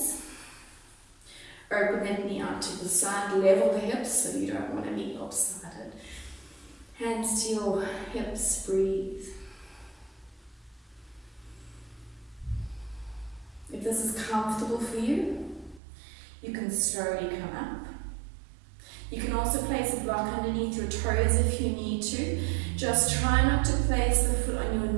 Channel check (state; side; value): drops out; left; at 15.8 s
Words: Open that knee out to the side, level the hips so you don't want to be lopsided. Hands to your hips, breathe. If this is comfortable for you, you can slowly come up. You can also place a block underneath your toes if you need to. Just try not to place the foot on your